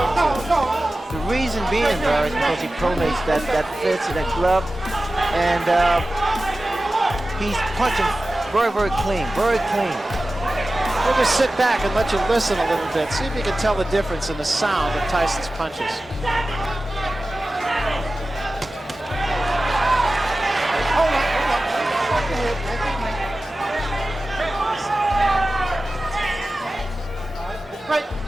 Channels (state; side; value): normal; both; correlation 0.95